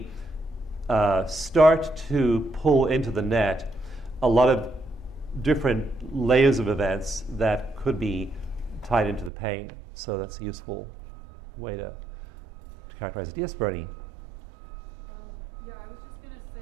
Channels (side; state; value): left; drops out; at 9.3 s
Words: start to pull into the net a lot of different layers of events that could be tied into the pain. So that's a useful way to to characterize it. Yes, Bernie. Yeah, I was just gonna say